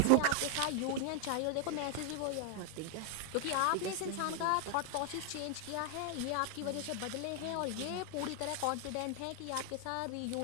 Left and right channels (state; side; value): different; both; correlation 0.00